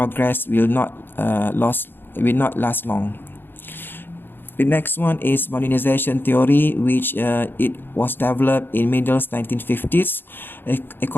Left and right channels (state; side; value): late; right; 0.099 ms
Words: will not last long. The next one is modernization theory, which it was developed in middle 1950s.